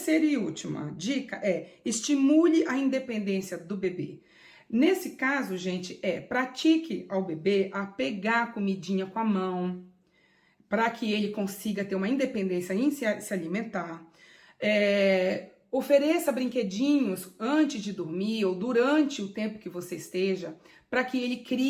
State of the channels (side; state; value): both; identical; correlation 1.00